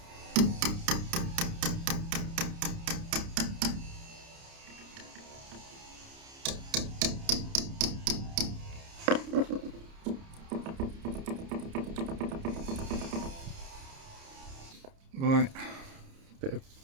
Right, bit of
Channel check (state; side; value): late; left; 30 ms